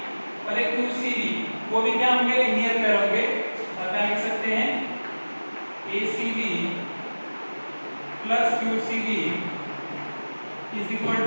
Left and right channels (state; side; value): inverted; both; correlation -1.00